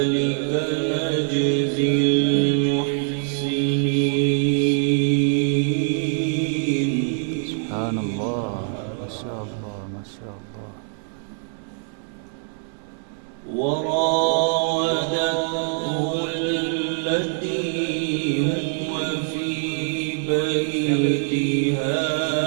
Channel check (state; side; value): silent; left; 63 dB below the other